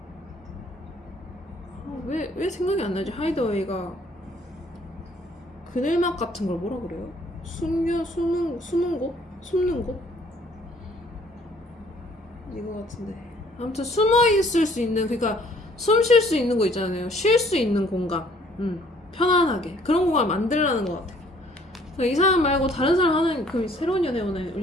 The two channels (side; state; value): both; normal; correlation 0.60